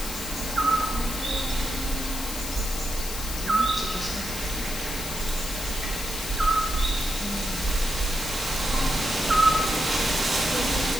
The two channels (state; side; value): noise; left; hiss, 7 dB below the sound